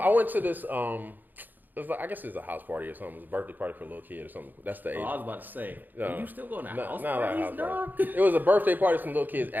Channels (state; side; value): late; left; 0.087 ms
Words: went to this, it was like, I guess it's a house party or something. It was a birthday party for a little kid or something. That's the age. Oh, I was about to say, are you still going to house not like a house dog? party. It was a birthday party for some little kids